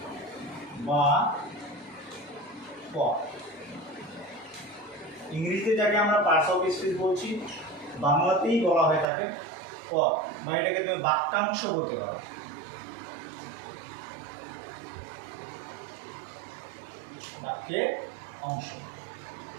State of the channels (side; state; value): left; drops out; at 9.1 s